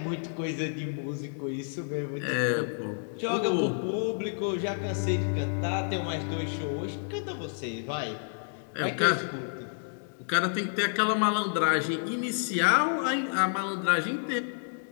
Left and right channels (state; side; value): silent; right; digital silence